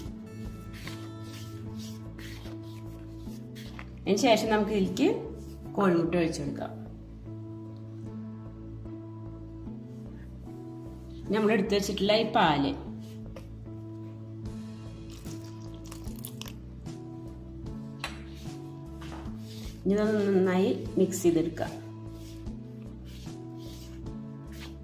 അതിന് ശേഷം നമുക്ക് ഇതിലേക്ക് കോഴിമുട്ട ഒഴിച്ചു കൊടുക്കാം. നമ്മൾ എടുത്തു വെച്ചിട്ടുള്ള ഈ പാല് ഇതൊന്ന് നന്നായി മിക്സ് ചെയ്തെടുക്കാം.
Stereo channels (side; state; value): both; identical; correlation 1.00